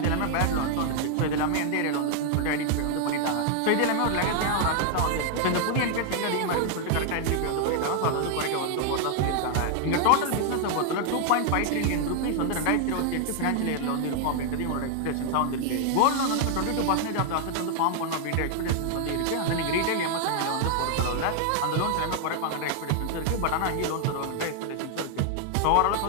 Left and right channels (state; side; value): different; both; correlation 0.00